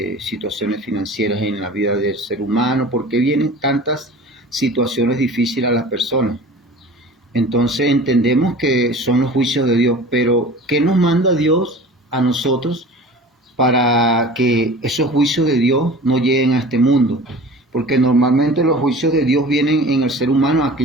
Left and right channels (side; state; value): both; normal; correlation 0.40